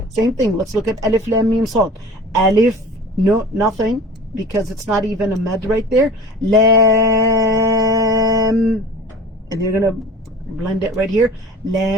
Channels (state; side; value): normal; both; correlation 0.40